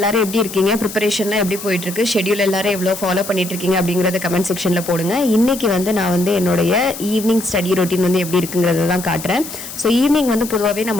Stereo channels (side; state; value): left; noise; hiss, 11 dB below the sound